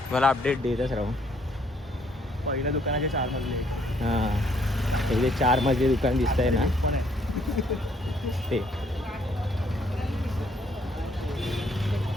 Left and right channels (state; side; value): normal; both; correlation 0.67